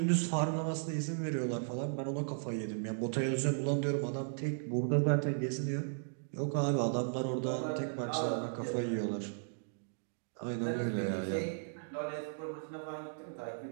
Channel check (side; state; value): left; silent; digital silence